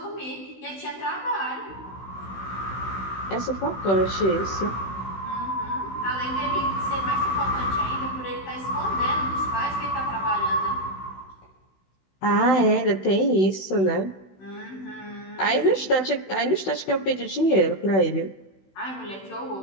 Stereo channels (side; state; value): right; late; 16 ms